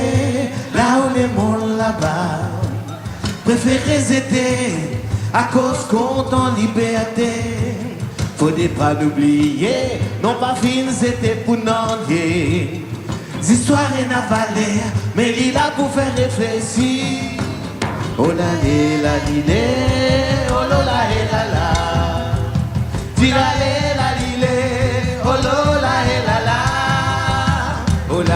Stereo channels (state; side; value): identical; both; correlation 1.00